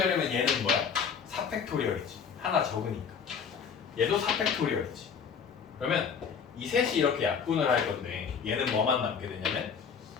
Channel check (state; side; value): quieter; right; 6.6 dB